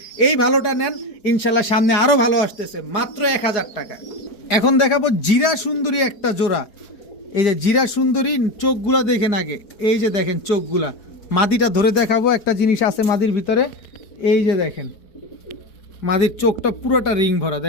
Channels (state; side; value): late; right; 4.5 ms